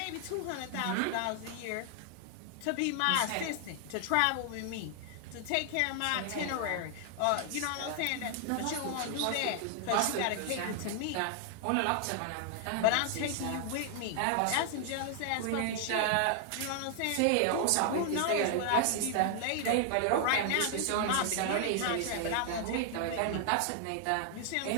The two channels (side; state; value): both; different; correlation 0.00